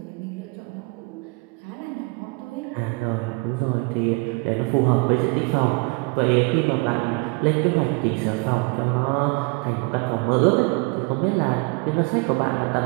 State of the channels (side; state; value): left; quieter; 28.9 dB